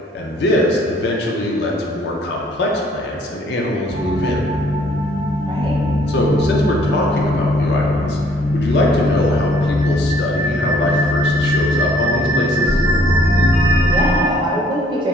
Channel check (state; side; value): normal; both; correlation 0.61